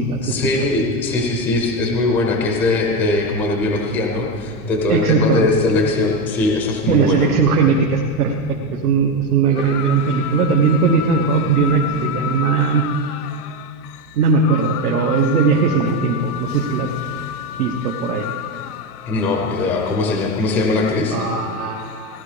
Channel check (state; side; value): normal; both; correlation 0.13